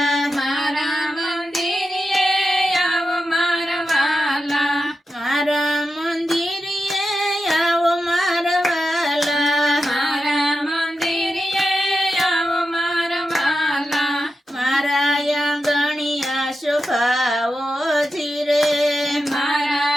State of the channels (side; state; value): both; normal; correlation 0.90